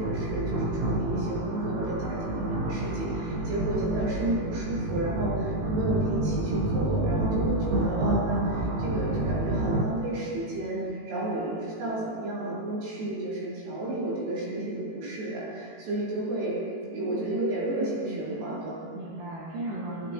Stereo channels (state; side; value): late; left; 18 ms